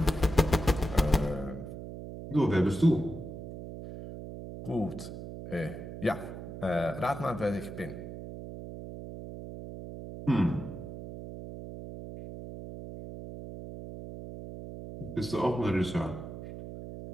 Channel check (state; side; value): noise; right; hum, 10 dB below the sound